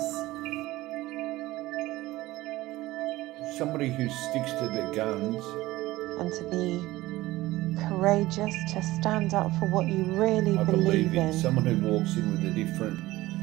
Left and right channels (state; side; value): quieter; left; 17.8 dB